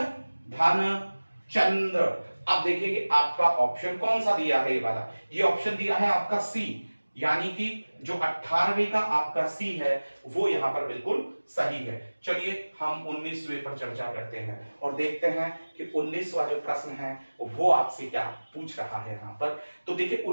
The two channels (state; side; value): inverted; both; correlation -1.00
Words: धन चंद्र। अब देखिए कि आपका ऑप्शन कौन सा दिया है, ये वाला, ये ऑप्शन दिया है आपका सी, यानी कि जो 18वें का आपका सी है वो यहां पर बिल्कुल सही है। चलिए हम 19वें पर चर्चा करते हैं और देखते हैं कि 19वां जो प्रश्न है वो आपसे क्या पूछ रहा है यहां पर। तो देखिए